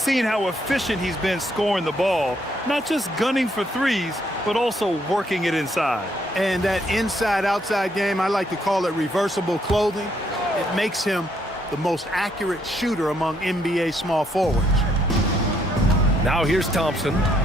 how efficient he's been scoring the ball, not just gunning for threes, but also working it inside. And that inside-outside game, I like to call it reversible clothing. It makes him the most accurate shooter among NBA small forwards. Now here's Thompson.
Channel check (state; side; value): normal; both; correlation 0.72